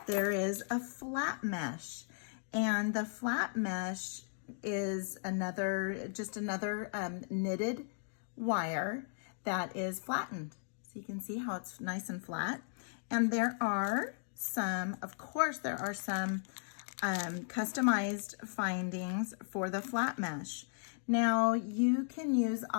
there is a flat mesh. And the flat mesh is just another knitted wire that is flattened. So you can see how it's nice and flat. And there are some customized findings for the flat mesh. Now you can use,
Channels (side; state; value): right; silent; digital silence